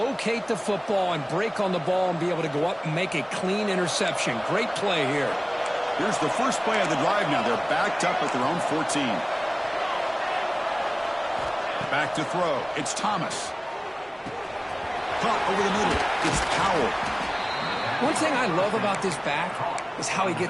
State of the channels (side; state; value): both; identical; correlation 1.00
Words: the football and break on the ball and be able to go up and make a clean interception. Great play here. Here's the first play of the drive now. They're backed up at their own 14. Back to throw. It's Thomas. Caught over the middle. It's Powell. One thing I love about this back is how he